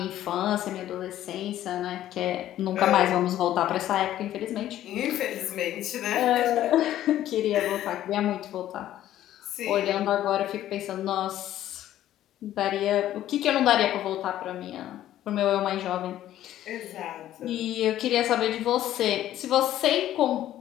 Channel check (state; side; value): quieter; right; 12.7 dB